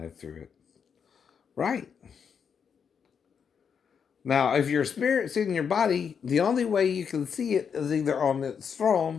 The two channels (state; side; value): quieter; right; 6.9 dB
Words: through it. Right. Now, if your spirit's in your body, the only way you can see it is either on its